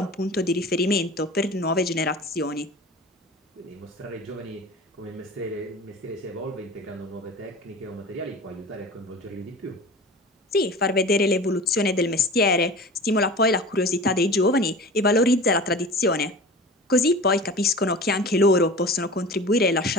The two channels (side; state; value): both; normal; correlation 0.36